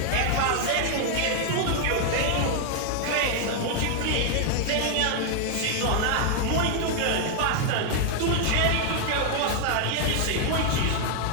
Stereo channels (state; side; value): different; both; correlation 0.00